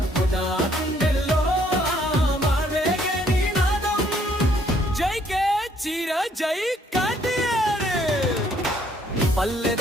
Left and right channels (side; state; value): both; normal; correlation 0.66